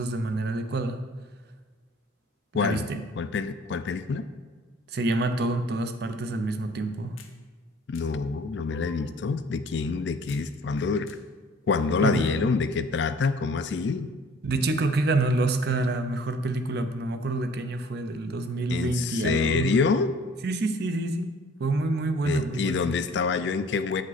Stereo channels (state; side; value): normal; both; correlation 0.52